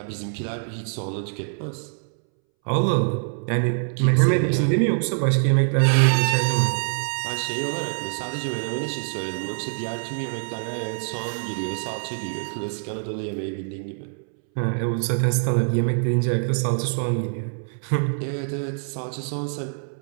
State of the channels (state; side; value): silent; left; 62 dB below the other